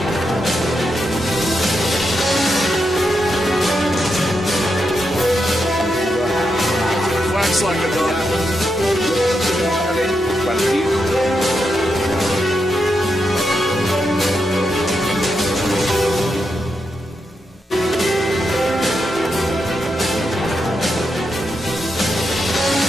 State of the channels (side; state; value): both; normal; correlation 0.84